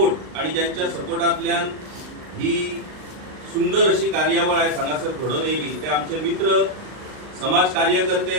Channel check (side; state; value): left; late; 39 ms